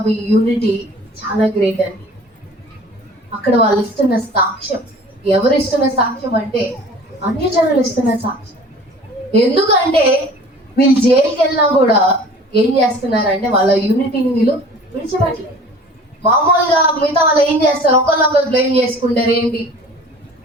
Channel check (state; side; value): normal; both; correlation 0.46